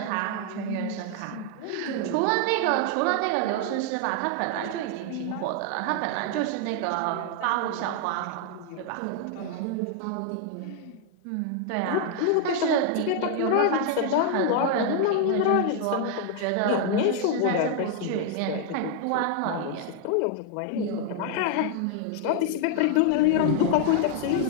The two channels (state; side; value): different; both; correlation 0.00